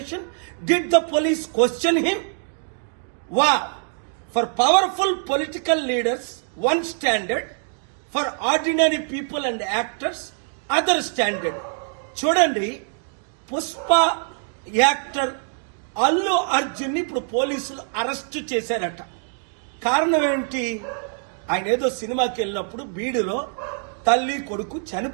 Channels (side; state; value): left; silent; 61 dB below the other